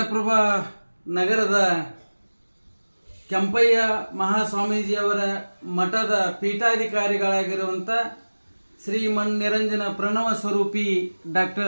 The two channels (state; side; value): inverted; both; correlation -1.00